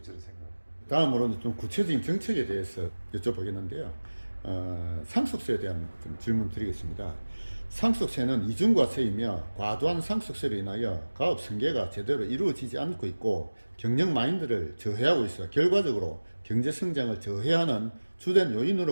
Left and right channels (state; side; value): inverted; both; correlation -1.00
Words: 저는 생각합니다. 다음으로는 좀 구체적인 정책에 대해서 여쭤보겠는데요. 상속세에 대한 좀 질문 드리겠습니다. 상속세는 이중과세이며 과도한 상속세로 인하여 가업 승계가 제대로 이루어지지 않고 있고 경영 마인드를 저해하고 있어 결과적으로 경제 성장을 저해하는 주된